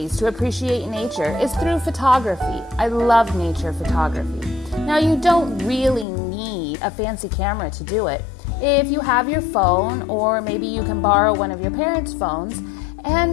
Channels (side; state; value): right; drops out; at 6.1 s